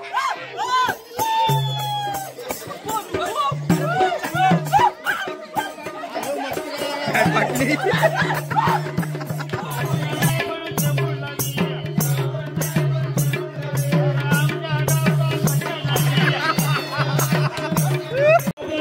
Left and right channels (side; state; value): both; identical; correlation 1.00